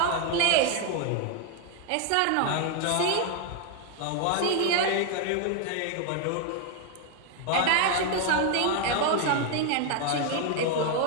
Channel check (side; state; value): both; different; correlation 0.01